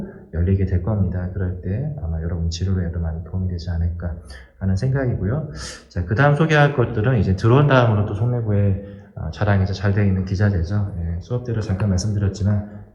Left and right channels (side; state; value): both; identical; correlation 1.00